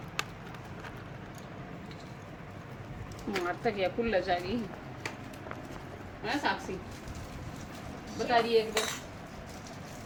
मारता क्या खुल जाएगी है साक्षी, बता रही है एक बार।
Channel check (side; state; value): both; identical; correlation 1.00